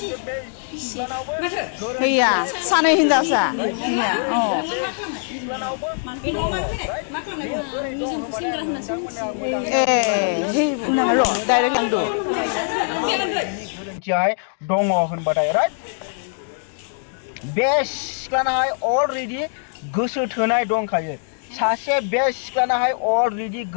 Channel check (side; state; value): right; silent; digital silence